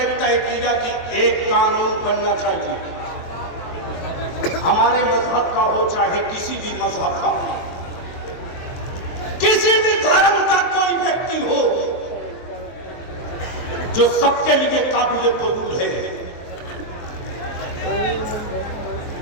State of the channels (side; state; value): right; late; 23 ms